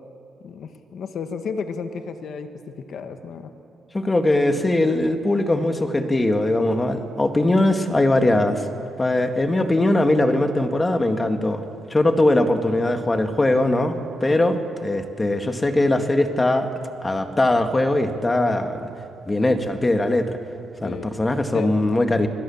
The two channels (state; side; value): normal; both; correlation 0.92